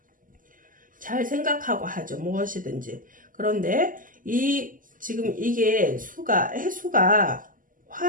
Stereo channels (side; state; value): left; late; 0.39 ms